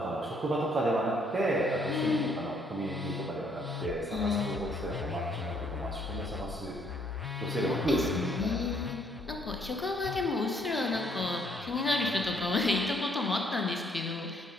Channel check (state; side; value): normal; both; correlation 0.67